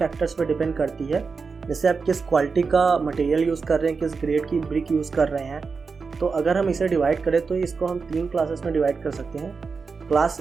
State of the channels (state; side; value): quieter; left; 4.9 dB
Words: पे डिपेंड करती है। जैसे आप किस क्वालिटी का मटेरियल यूज़ कर रहे हैं, किस ग्रेड की ब्रिक यूज़ कर रहे हैं। तो अगर हम इसे डिवाइड करें तो इसको हम 3 क्लासेस में डिवाइड कर सकते हैं। क्लास